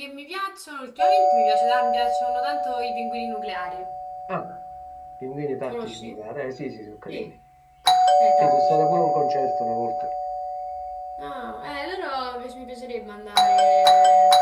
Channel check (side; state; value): both; identical; correlation 1.00